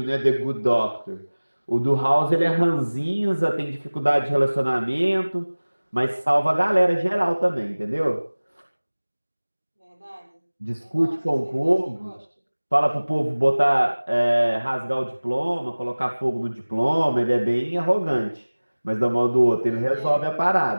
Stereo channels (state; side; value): inverted; both; correlation -1.00